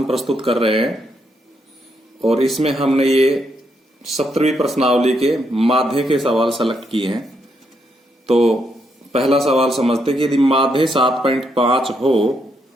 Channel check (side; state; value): both; normal; correlation 0.78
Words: प्रस्तुत कर रहे हैं और इसमें हमने ये 17वीं प्रश्नावली के माध्य के सवाल सेलेक्ट किए हैं। तो पहला सवाल समझते कि यदि माध्य 7.5 हो